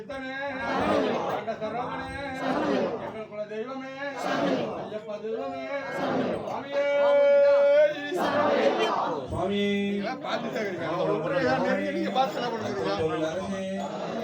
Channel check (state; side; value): identical; both; correlation 1.00